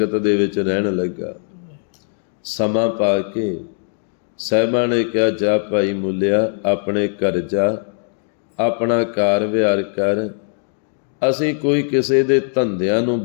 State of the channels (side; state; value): right; silent; 64 dB below the other